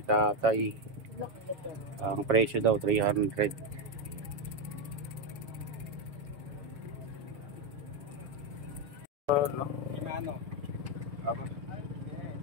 tatay. Ang presyo daw 300. No?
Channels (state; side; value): late; left; 7.3 ms